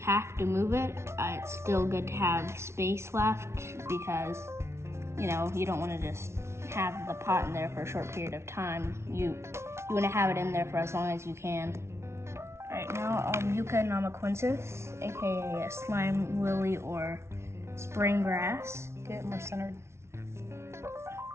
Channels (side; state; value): left; late; 0.13 ms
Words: to move it, it's still good to have space left because, you don't want to just have the pot in there for a short period of time. You want to have it in there for as long as you can. Alright, now Yucca namaquensis, aka a slime lily or spring grass. Get it more centered.